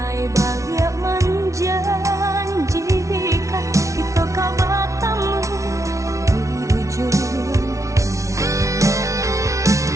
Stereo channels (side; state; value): left; late; 0.15 ms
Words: balik menjanjikan kita kau bertemu di ujung.